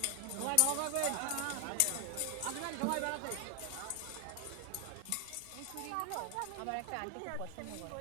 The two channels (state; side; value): different; both; correlation 0.00